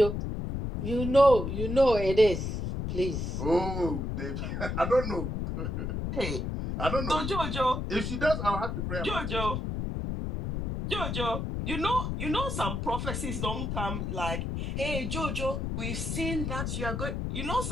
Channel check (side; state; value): left; noise; rumble, 3 dB below the sound